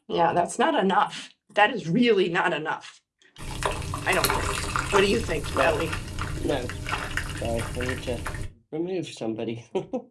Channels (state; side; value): identical; both; correlation 1.00